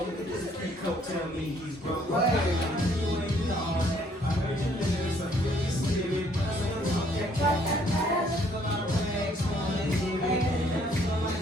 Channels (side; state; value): both; normal; correlation 0.64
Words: Tell me he's broke.